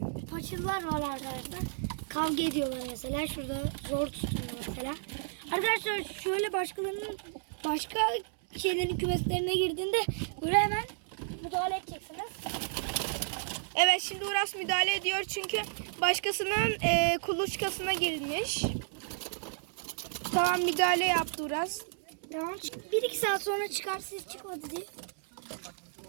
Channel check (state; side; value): silent; left; 56 dB below the other